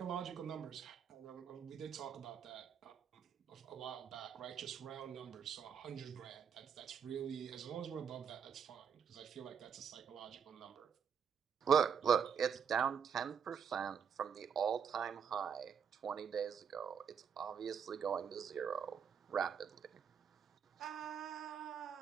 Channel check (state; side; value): quieter; left; 7.3 dB